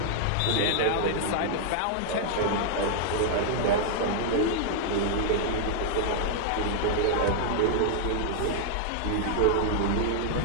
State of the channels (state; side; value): different; both; correlation 0.00